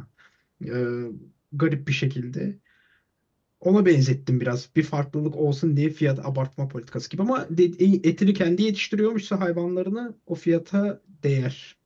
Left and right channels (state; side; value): identical; both; correlation 1.00